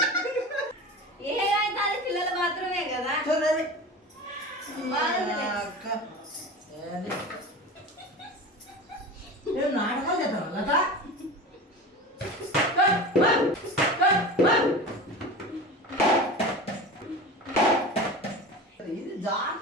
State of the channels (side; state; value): both; normal; correlation 0.31